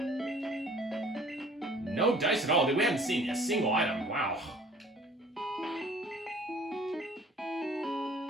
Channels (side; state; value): both; normal; correlation 0.53